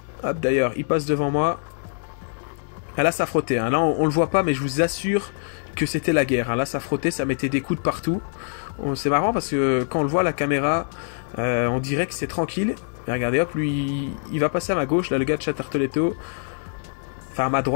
Hop, d'ailleurs, il passe devant moi. Ah, là, ça frottait. Hein. Là, on le voit pas, mais je vous assure que c'était la guerre. Hein. Là, ça frottait, ça mettait des coups de partout. C'est marrant parce que quand on le voit à la caméra, on dirait que c'est tranquille. Mais regardez, hop, lui, il va passer à ma gauche. Là, le gars de Tartoletto. Enfin, à ma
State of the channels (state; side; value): silent; right; digital silence